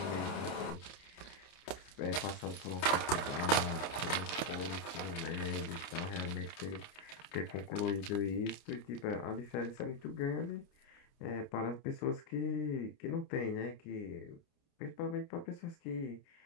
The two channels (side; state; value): right; late; 29 ms